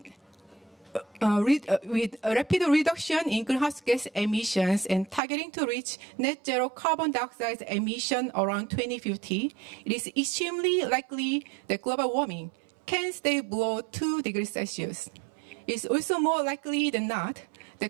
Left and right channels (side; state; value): left; drops out; at 5.2 s